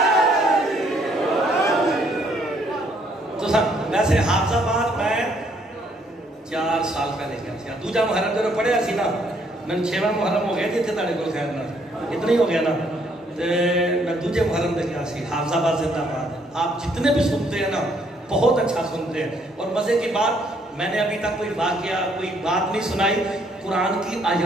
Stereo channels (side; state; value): both; normal; correlation 0.68